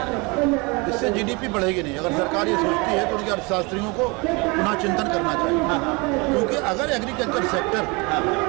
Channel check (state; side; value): quieter; left; 27.9 dB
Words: रहा है? इससे GDP बढ़ेगी नहीं। अगर सरकार ये सोचती है तो उनके अर्थशास्त्रियों को पुनः चिंतन करना चाहिए, क्योंकि अगर एग्रीकल्चर सेक्टर